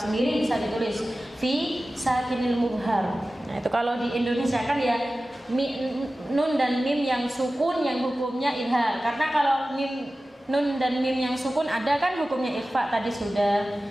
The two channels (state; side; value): normal; both; correlation 0.95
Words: bisa ditulis fi sakinil mubhar. Nah, itu kalau di Indonesia kan ya nun dan mim yang sukun yang hukumnya idhar. Karena kalau nun dan mim yang sukun ada kan hukumnya ikhfa tadi sudah,